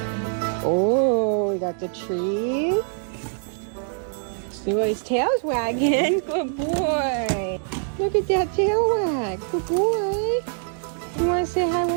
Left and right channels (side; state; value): left; silent; digital silence